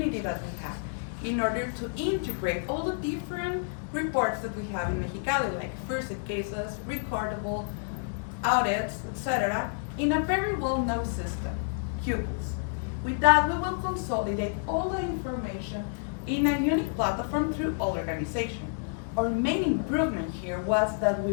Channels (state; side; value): silent; right; digital silence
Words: that we have in order to integrate all the different reports that we have in Mexicali, like first aid cases, recordable, audits, etc., in a very well-known system, Pupils. With that, we will consolidate all the information in a unique platform through all organization. Our main improvement here was that we